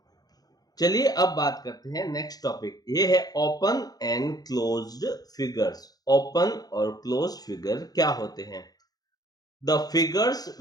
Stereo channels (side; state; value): right; late; 0.19 ms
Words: चलिए अब बात करते हैं नेक्स्ट टॉपिक, ये है open and closed figures. Open और क्लोज फिगर क्या होते हैं? The figures